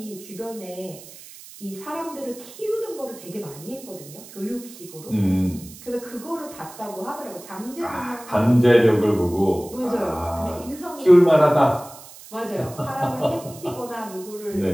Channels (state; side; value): noise; right; hiss, 18 dB below the sound